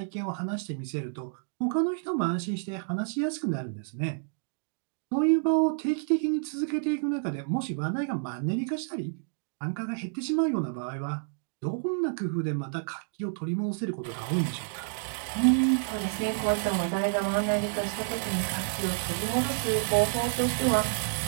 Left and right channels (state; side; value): silent; left; digital silence